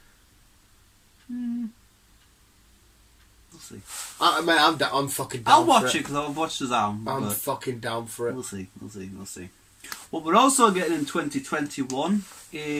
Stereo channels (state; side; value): identical; both; correlation 1.00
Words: We'll see. I'm fucking down. I'll watch it because I'll watch Shazam. I'm fucking down for it. We'll see. What we're also getting in 2021